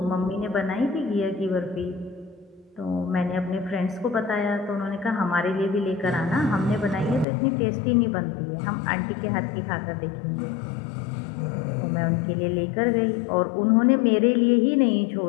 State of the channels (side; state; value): right; drops out; at 7.2 s